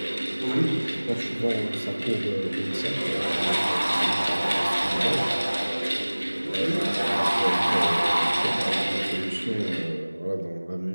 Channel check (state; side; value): inverted; both; correlation -1.00